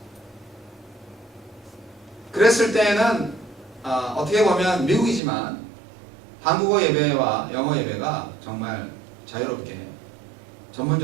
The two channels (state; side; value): drops out; left; at 5.2 s